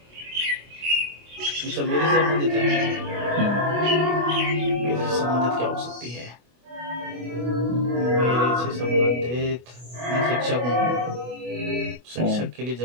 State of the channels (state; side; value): late; left; 24 ms